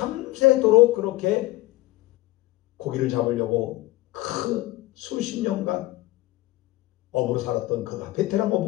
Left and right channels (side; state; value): right; quieter; 18.4 dB